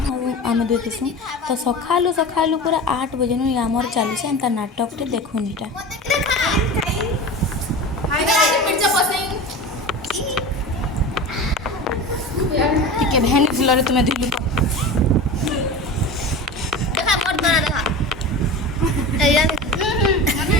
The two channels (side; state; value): both; normal; correlation 0.31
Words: आम दुई थीसूँ। तो सकालू सकालू पूरा 8 बजे नु आमर चली एंता नाटक टे देखुनीटा। ଟିକେ ଭେନି ଫୁଲରେ ତୁମେ ଧୁଇଲୁ ତ